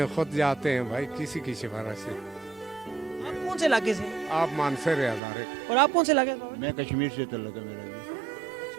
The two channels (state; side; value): drops out; left; at 5.2 s